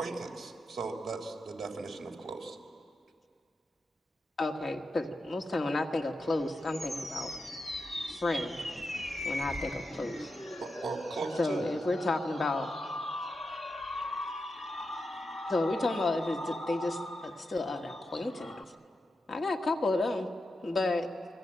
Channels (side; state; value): both; normal; correlation 0.88